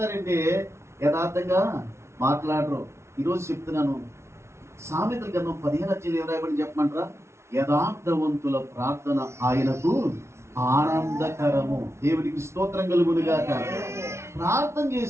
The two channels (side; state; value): left; late; 0.13 ms